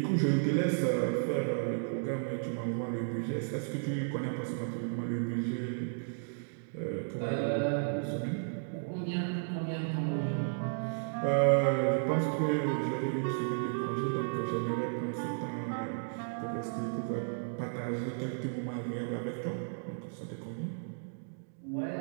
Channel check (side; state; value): left; silent; digital silence